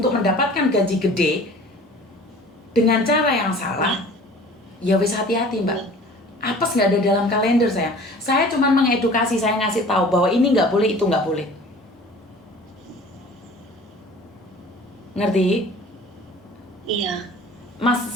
mendapatkan gaji gede dengan cara yang salah, ya wis hati-hati, Mbak. Apes nggak ada dalam kalender saya. Saya cuma mengedukasi, saya ngasih tahu bahwa ini nggak boleh, itu nggak boleh. Ngerti? Iya. Mas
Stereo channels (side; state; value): both; normal; correlation 0.45